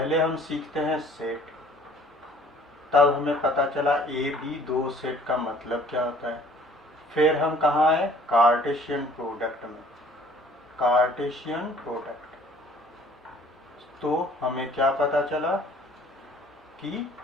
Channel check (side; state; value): both; normal; correlation 0.55